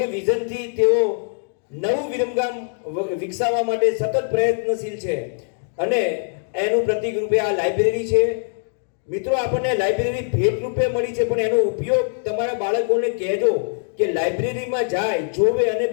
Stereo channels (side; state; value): right; silent; digital silence